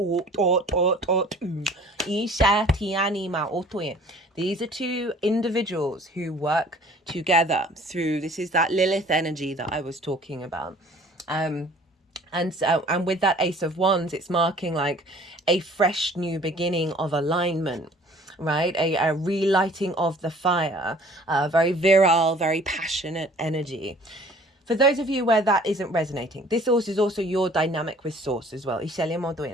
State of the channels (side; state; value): both; normal; correlation 0.51